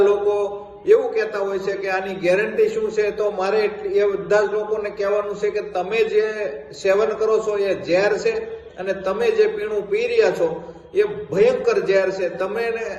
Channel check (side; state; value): both; identical; correlation 1.00